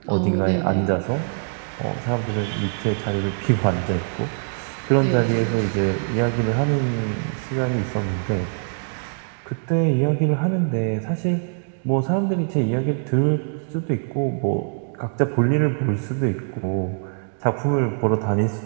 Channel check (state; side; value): silent; left; 63 dB below the other